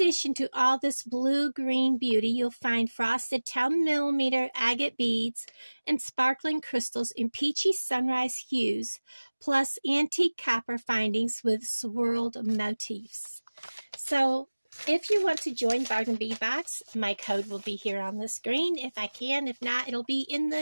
to all this blue-green beauty, you'll find frosted 10mm agate beads and sparkling crystals in peachy sunrise hues, plus antique copper findings with swirled motifs. So, if you want to join Bargain Bead Box, my code will be here on the screen if I can. If not, it'll be in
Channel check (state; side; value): inverted; both; correlation -1.00